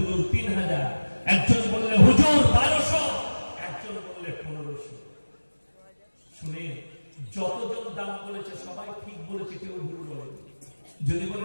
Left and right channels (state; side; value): inverted; both; correlation -1.00